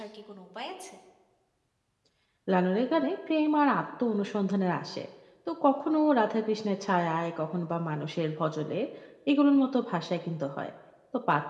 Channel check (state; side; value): identical; both; correlation 1.00